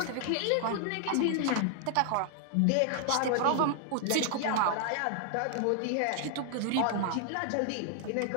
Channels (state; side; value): different; both; correlation 0.00